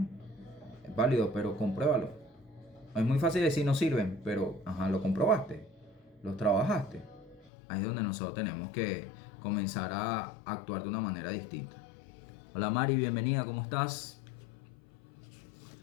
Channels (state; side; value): drops out; right; at 7.5 s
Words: es válido, pero compruébalo. Es muy fácil decir no sirven, pero ajá, lo comprobaste, los trabajaste. Ahí es donde nosotros tenemos que comenzar a actuar de una manera distinta. Hola Mari, bienvenida, ¿cómo estás?